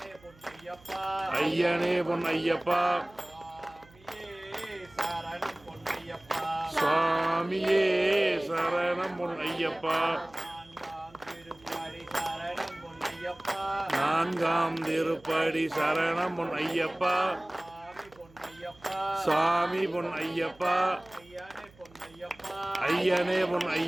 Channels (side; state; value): right; noise; hum, 26 dB below the sound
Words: ஐயனே பொன்னையப்பா சுவாமியே சரணம் பொன்னையப்பா நான்காம் திருப்படி சரணம் பொன்னையப்பா சாமி பொன்னையப்பா ஐயனே